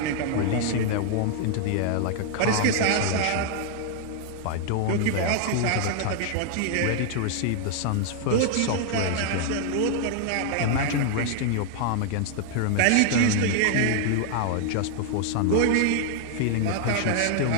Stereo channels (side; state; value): both; different; correlation 0.00